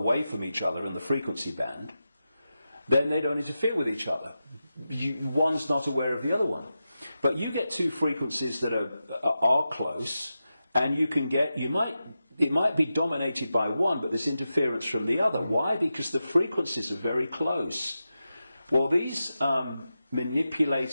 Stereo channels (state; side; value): inverted; both; correlation -0.91